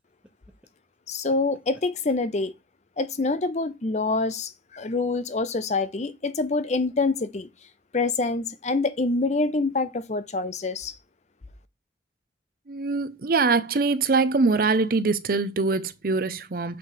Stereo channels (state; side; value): normal; both; correlation 0.25